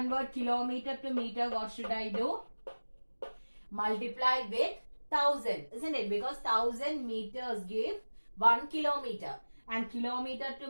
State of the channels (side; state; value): both; inverted; correlation -1.00